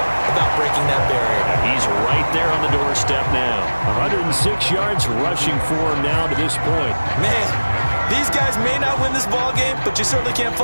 about breaking that barrier. He's right there on the doorstep now. 106 yards rushing for him now to this point. Man, these guys may not win this ball game, but you certainly can't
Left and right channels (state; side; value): inverted; both; correlation -1.00